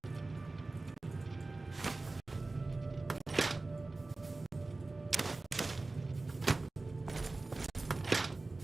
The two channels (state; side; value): quieter; left; 3.3 dB